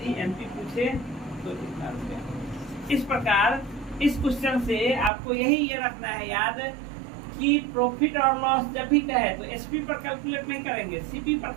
एमपी पूछे तो कितना रुपया। इस प्रकार इस क्वेश्चन से आपको यही ये रखना है याद कि प्रॉफिट और लॉस जब भी कहे तो एसपी पर कैलकुलेट नहीं करेंगे, सीपी पर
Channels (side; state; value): left; drops out; at 5.1 s